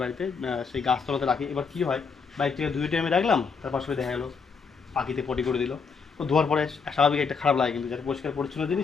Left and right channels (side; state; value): right; quieter; 5.4 dB